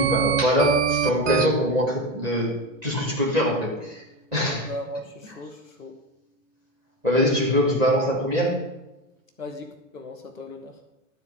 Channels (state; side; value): late; left; 1.9 ms